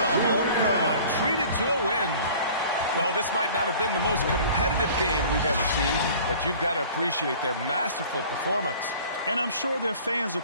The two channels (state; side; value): inverted; both; correlation -0.46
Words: home crowd treated to a win. Well, this might not have been the most competitive game we've ever seen, but you've got to appreciate their masterful performance. And I'm sure their fans